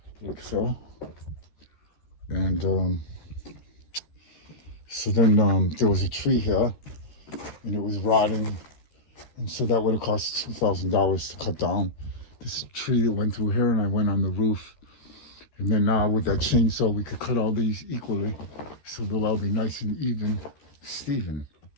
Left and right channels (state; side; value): late; right; 13 ms